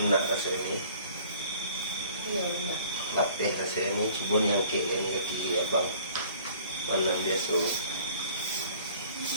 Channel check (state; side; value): inverted; both; correlation -0.52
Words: rasa ini. Apa rasa ini? Cuma yang kek ini kaki abang. Mana biasa.